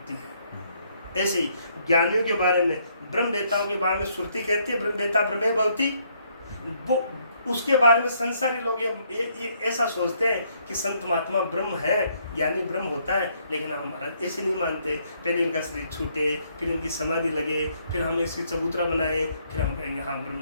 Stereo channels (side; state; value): both; inverted; correlation -0.69